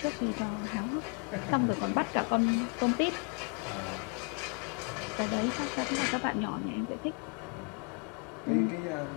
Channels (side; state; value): right; quieter; 36.8 dB